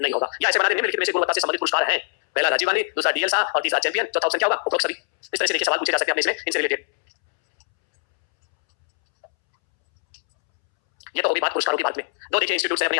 नहीं होगा। या ऐसे बना दे, निम्नलिखित में से गुणवत्ता से संबंधित पुरस्कार है, पहला राजीव गांधी, दूसरा डीएल साहा और तीसरा चैंपियन, चौथा ऑप्शन क्या होगा, उपरोक्त सभी। इस तरह से देखिए सवाल पूछे जा सकते हैं अपने इसमें, इनसे रिलेटेड। ये तो होगी बात पुरस्कारों की बात में। दो देखिए इंस्टीट्यूट है अपने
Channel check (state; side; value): silent; right; 64 dB below the other